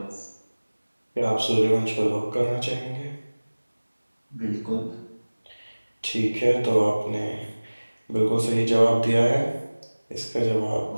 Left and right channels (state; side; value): inverted; both; correlation -1.00